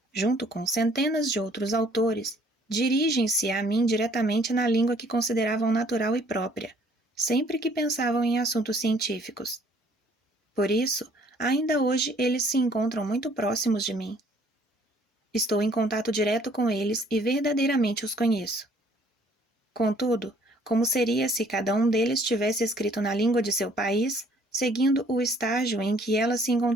junto com centenas de outros autores, dirigem-se a mim diretamente na língua que consideravam natural e própria, sempre que pensavam em assuntos científicos. Por isso, ainda hoje eles se encontram muito próximos de mim. Estou em contato direto com eles e verdadeiramente os conheço. Contudo, como seria se cada um deles tivesse escrito na língua de seu país, seguindo o estágio em que ela se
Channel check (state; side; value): normal; both; correlation 0.60